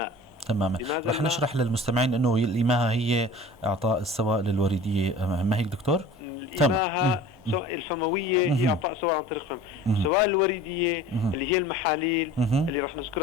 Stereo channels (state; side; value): normal; both; correlation 0.42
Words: تماما. رح نشرح للمستمعين انه الإماهة هي اعطاء السوائل الوردية، ما هيك دكتور؟ الإماهة الفموية هي اعطاء سوائل عن طريق فم. السوائل الوريدية اللي هي المحاليل اللي رح